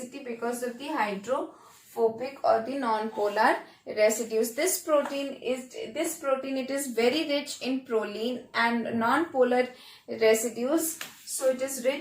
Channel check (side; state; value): both; identical; correlation 1.00